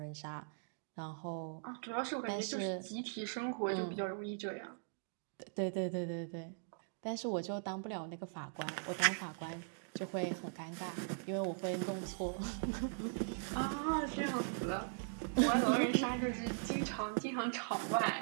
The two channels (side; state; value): left; silent; digital silence